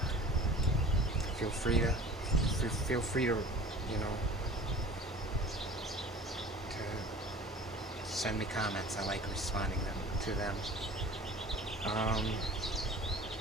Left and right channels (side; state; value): both; normal; correlation 0.43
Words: feel free to, to send me comments. I like responding to them.